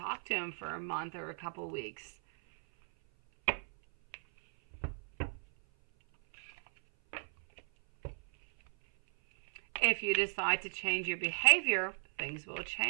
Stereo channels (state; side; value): silent; left; 54 dB below the other